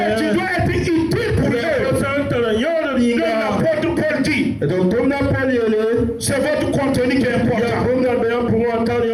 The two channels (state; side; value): identical; both; correlation 1.00